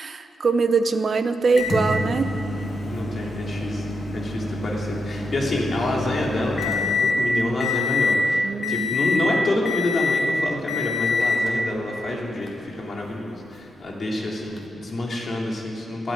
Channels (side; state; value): both; normal; correlation 0.83